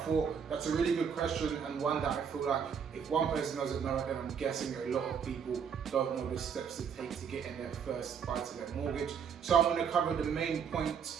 that's a really good question, and one that I feel like if one person doesn't know it, then I'm guessing a lot of people don't know the steps to take to get in their first buy-to-let mortgage. So I'm going to cover the main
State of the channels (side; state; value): left; quieter; 7.1 dB